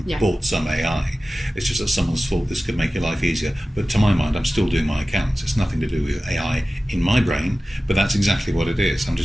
and bought some AI. It's just that someone's thought this could make your life easier. But to my mind, I'm still doing my accounts. It's nothing to do with AI in my brain, but that's exactly what it is. I'm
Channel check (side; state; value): both; normal; correlation 0.95